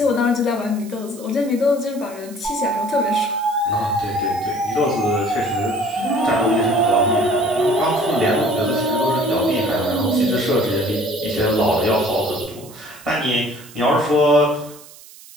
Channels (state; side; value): noise; right; hiss, 20 dB below the sound